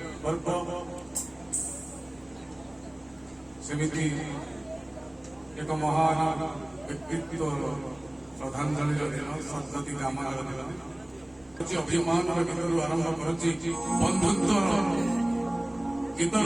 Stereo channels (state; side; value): noise; left; hum, 29 dB below the sound